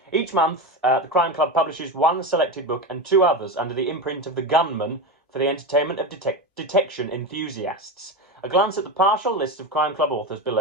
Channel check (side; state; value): both; normal; correlation 0.20